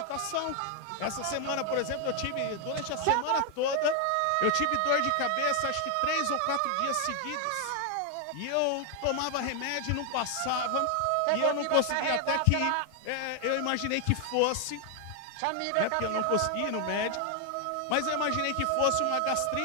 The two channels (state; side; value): different; both; correlation 0.00